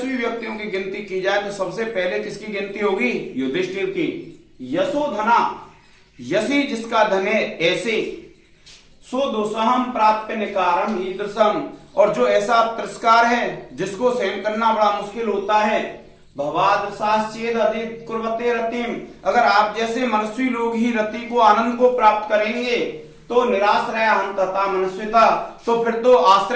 व्यक्तियों की गिनती की जाए तो सबसे पहले किसकी गिनती होगी? युधिष्ठिर की। यशोधना, यशी जिसका धन है, ऐसे सो दुस्सहम प्राप्त निकारम ईदृशम, और जो ऐसा तिरस्कार है जिसको सहन करना बड़ा मुश्किल होता है, भवादर्शाश्चेद अधिकुर्वते रतिम, अगर आप जैसे मनस्वी लोग ही रति को, आनंद को प्राप्त करेंगे, तो निराश्रय हम तथा मनस्विता, तो फिर तो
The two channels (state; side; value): identical; both; correlation 1.00